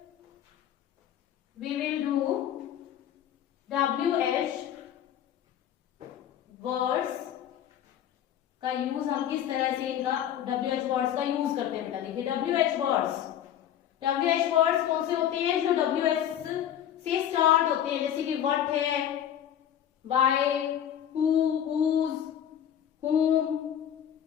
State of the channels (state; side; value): quieter; right; 10.2 dB